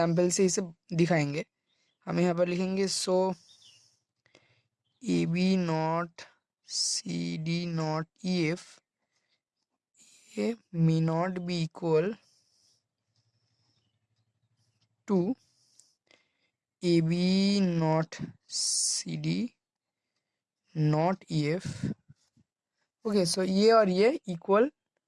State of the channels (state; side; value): identical; both; correlation 1.00